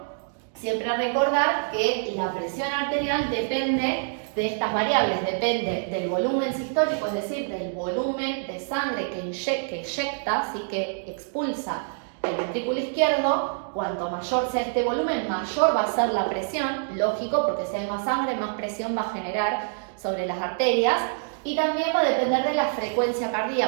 siempre recordar que la presión arterial depende de estas variables, depende del volumen sistólico, es decir, del volumen de sangre que eyecta, ¿sí? Que expulsa el ventrículo izquierdo. Cuanto mayor sea este volumen, mayor va a ser la presión, lógico, porque si hay más sangre, más presión va a generar sobre las arterias. Y también va a depender de la frecuencia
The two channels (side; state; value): left; silent; digital silence